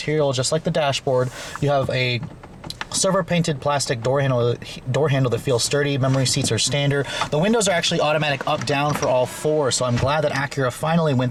just like the dashboard. You have a silver painted plastic door handle that feels sturdy. Memory seats are standard. The windows are actually automatic up down for all four, so I'm glad that Acura finally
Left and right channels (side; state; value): both; identical; correlation 1.00